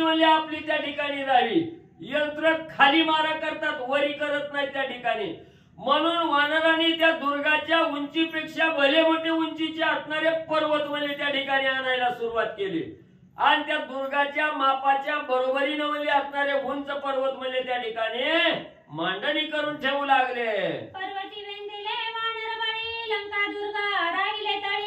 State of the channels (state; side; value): identical; both; correlation 1.00